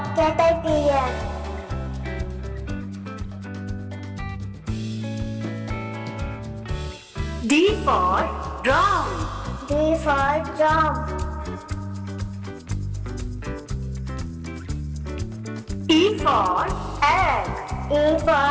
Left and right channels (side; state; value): both; identical; correlation 1.00